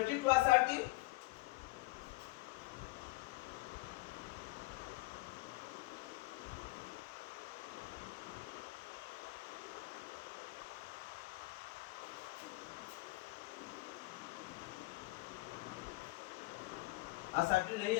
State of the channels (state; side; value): quieter; right; 21.4 dB